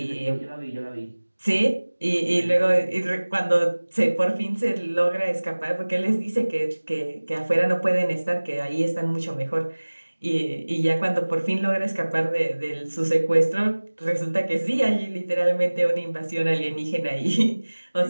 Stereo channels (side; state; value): both; inverted; correlation -1.00